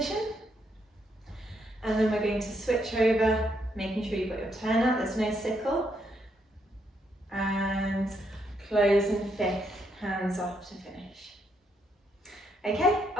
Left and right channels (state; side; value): normal; both; correlation 0.76